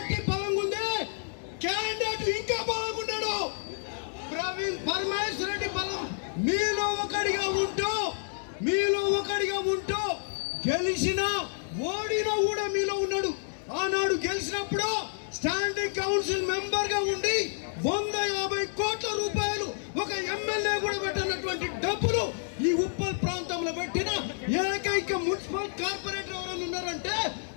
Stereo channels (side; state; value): right; silent; digital silence